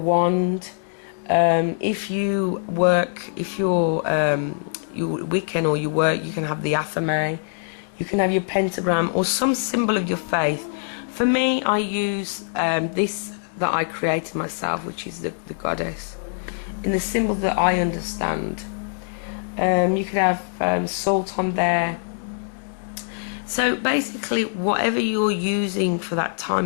If you're Wiccan or you can have the athame, you can have your pentagram or some symbol of your faith. For me, I use this that I created myself, which is the goddess, in the symbol that I understand. You could have salt on there. So basically whatever you're using for that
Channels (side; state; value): right; silent; digital silence